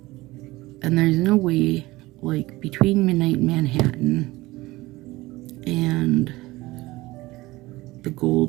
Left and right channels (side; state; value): left; quieter; 19.7 dB